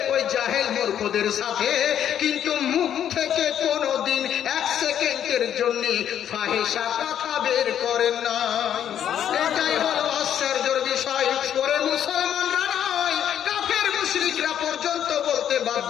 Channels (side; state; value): right; quieter; 9.8 dB